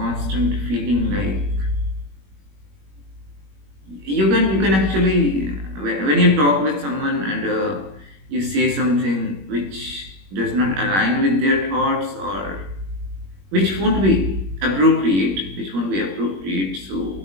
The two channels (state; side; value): late; left; 21 ms